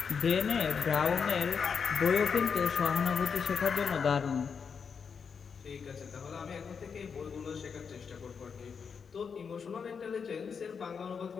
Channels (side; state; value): right; quieter; 6.2 dB